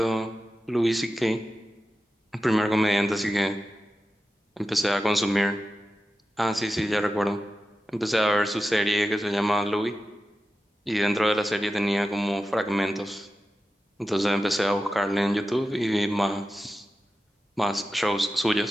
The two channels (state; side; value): normal; both; correlation 0.93